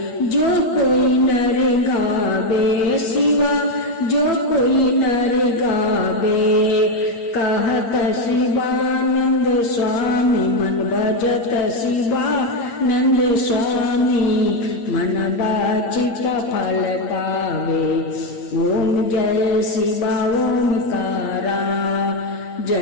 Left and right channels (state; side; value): late; right; 8.6 ms